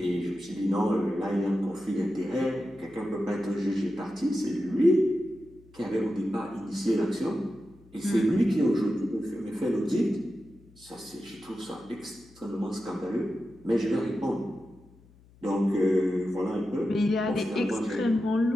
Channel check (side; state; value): left; noise; hum, 26 dB below the sound